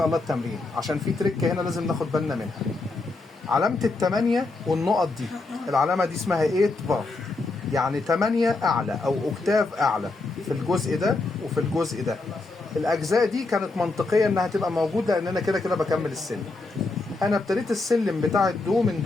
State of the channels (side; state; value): right; quieter; 3.4 dB